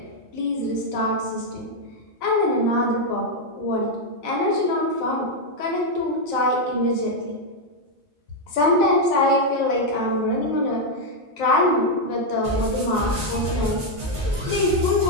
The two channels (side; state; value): both; normal; correlation 0.01